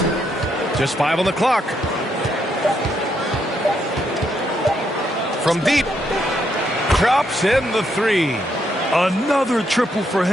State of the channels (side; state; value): both; normal; correlation 0.77